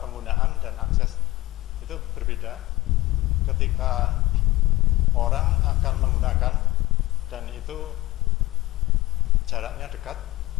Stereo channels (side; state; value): right; quieter; 18.6 dB